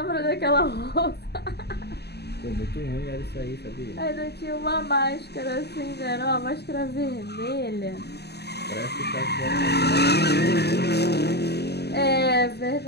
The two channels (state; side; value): late; right; 0.48 ms